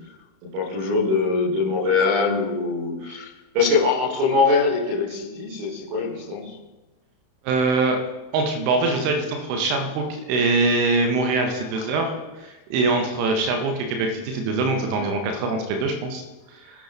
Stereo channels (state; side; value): late; left; 32 ms